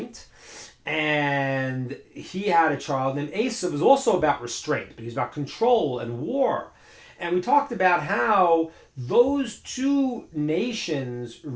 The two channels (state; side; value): identical; both; correlation 1.00